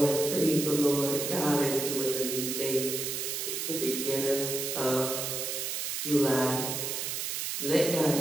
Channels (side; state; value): right; noise; hiss, 2 dB below the sound